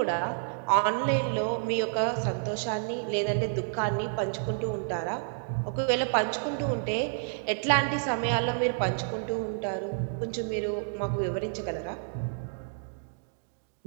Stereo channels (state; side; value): silent; left; digital silence